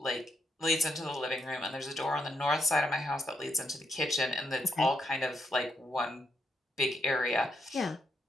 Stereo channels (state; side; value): normal; both; correlation 0.78